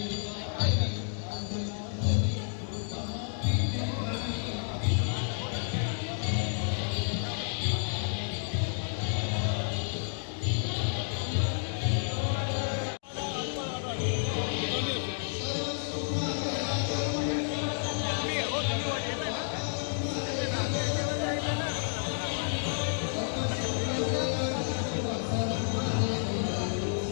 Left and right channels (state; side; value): silent; right; digital silence